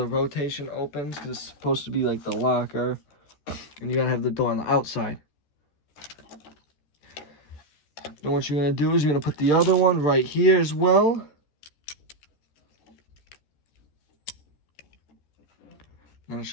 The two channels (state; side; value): late; right; 14 ms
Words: rotation opens because it's supposed to be like the locker. And you're going to have the door on the outside. Then what you're going to do is you're going to put the other one right here as well. And it